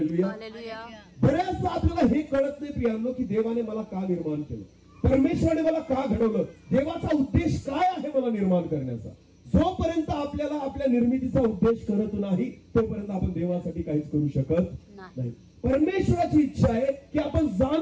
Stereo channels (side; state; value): both; identical; correlation 1.00